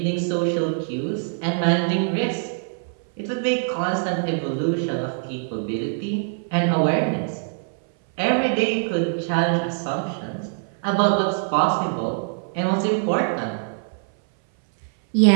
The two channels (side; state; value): left; silent; 59 dB below the other